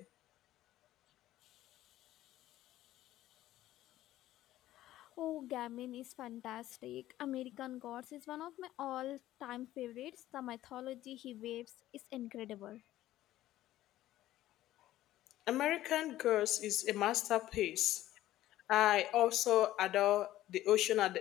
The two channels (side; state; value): right; quieter; 14.4 dB